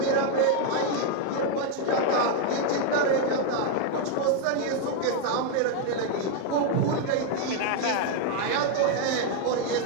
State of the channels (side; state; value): both; different; correlation 0.01